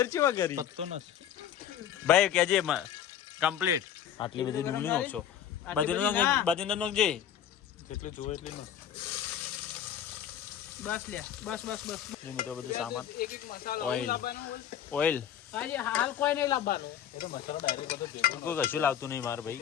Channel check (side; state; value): right; quieter; 10.0 dB